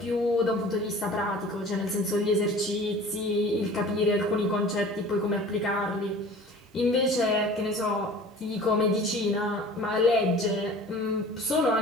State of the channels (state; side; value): normal; both; correlation 0.44